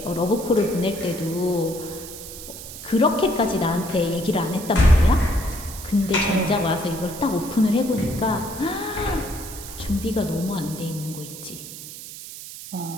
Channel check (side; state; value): right; noise; hiss, 12 dB below the sound